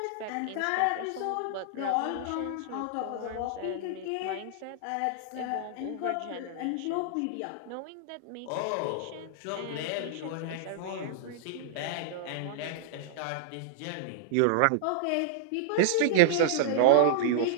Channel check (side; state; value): both; different; correlation -0.02